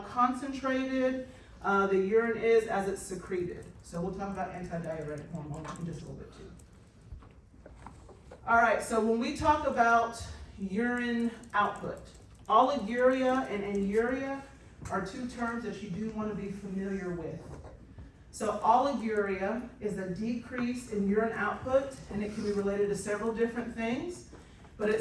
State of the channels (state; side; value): identical; both; correlation 1.00